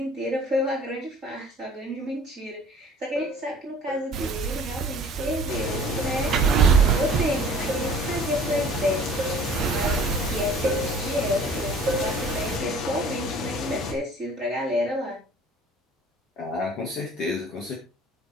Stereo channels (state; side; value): normal; both; correlation 0.49